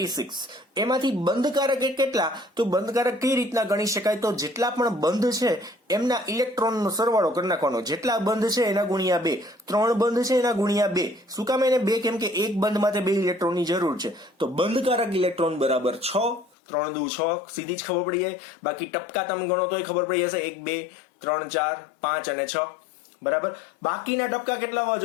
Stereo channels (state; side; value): drops out; right; at 16.5 s